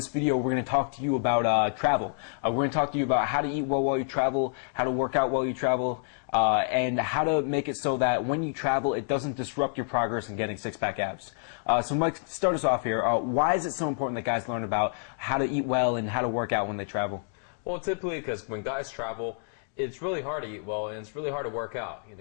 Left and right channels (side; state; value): right; silent; digital silence